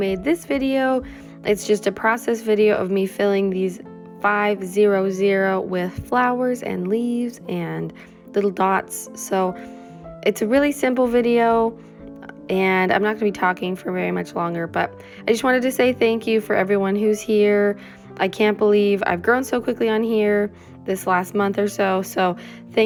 this video. It's just a process video of me filling these 500 with flowers and leaves and little dots. So it's a really simple video, and I'm not going to be talking for very much longer, but I just wanted to say thank you for everyone who's here. I can't believe I've grown so quickly on here this last month or so. So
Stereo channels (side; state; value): both; identical; correlation 1.00